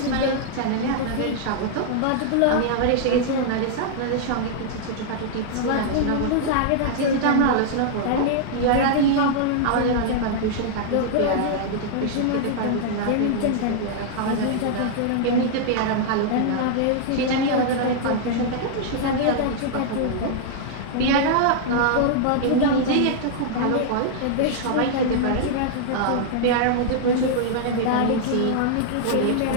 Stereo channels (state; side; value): different; both; correlation -0.01